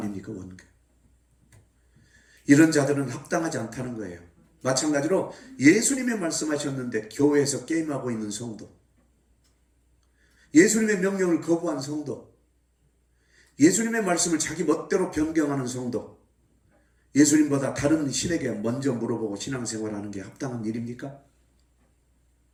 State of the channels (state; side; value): identical; both; correlation 1.00